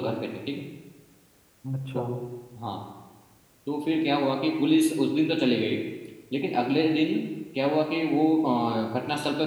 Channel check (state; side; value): identical; both; correlation 1.00